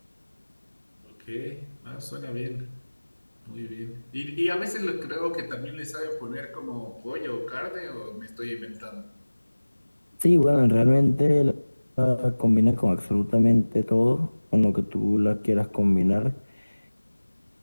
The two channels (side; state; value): both; inverted; correlation -1.00